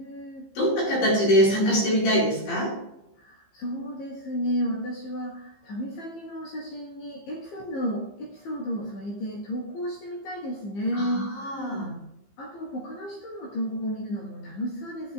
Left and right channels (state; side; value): late; right; 15 ms